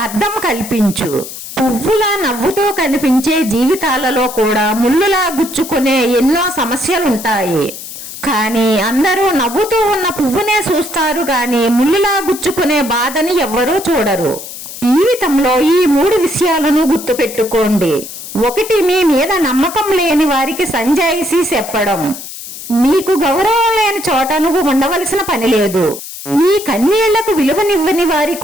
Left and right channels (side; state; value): left; noise; hiss, 11 dB below the sound